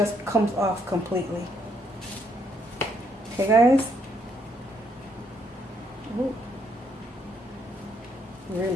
comes off completely. Okay, guys. Ooh.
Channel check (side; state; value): both; normal; correlation 0.72